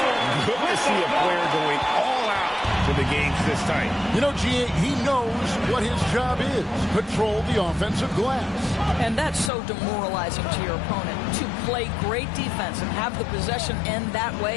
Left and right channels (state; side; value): drops out; right; at 9.5 s